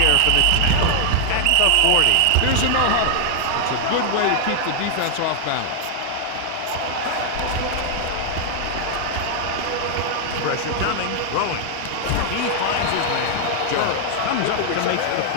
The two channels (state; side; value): different; both; correlation 0.00